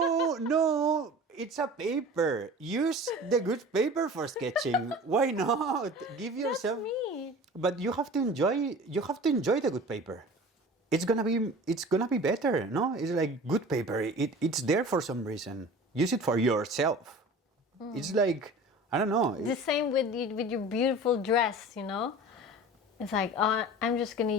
it's a paper. Use the good paper for sketching. Why not? Give yourself. That's me. But you have to enjoy the good paper. It's gonna be better. No, it's like good paper. It's there for some reason. Use it for yourself. It's like, I don't know. The same with your beautiful dress, you know? It's like, I'm just going to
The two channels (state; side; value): normal; both; correlation 0.40